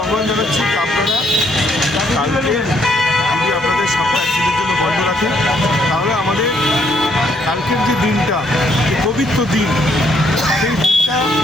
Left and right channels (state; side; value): normal; both; correlation 0.70